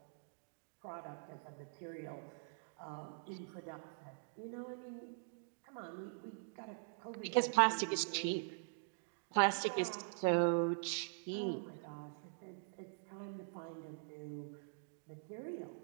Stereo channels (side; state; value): left; silent; digital silence